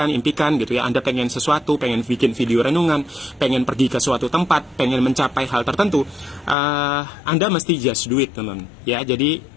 impikan, gitu ya. Anda pengen sesuatu, pengen bikin video renungan, pengen pergi ke suatu tempat, pengen mencapai hal tertentu, Anda mesti just do it, teman-teman. Ya, jadi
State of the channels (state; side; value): drops out; right; at 6.6 s